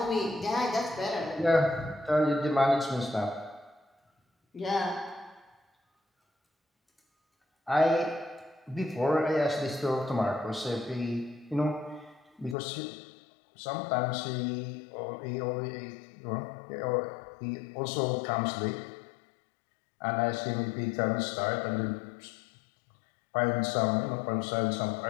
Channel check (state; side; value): drops out; right; at 12.6 s